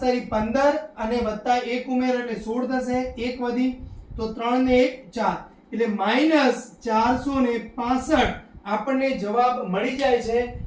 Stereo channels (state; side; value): identical; both; correlation 1.00